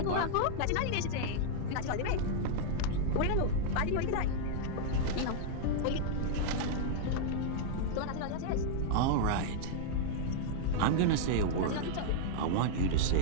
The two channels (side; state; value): both; different; correlation -0.01